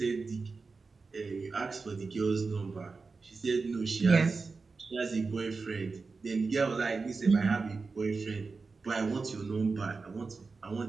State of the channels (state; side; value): quieter; left; 4.3 dB